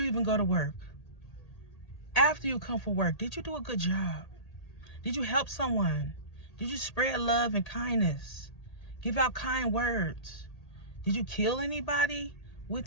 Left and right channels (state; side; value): late; right; 1.8 ms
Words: even go to work, after you come from work, did you do a good job? Did you help someone? Did you spread love and kindness? Give out kind words? Did you kill anybody